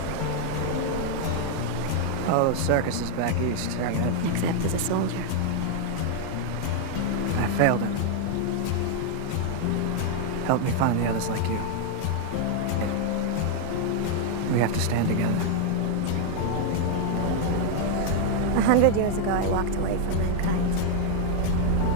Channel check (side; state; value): both; different; correlation 0.00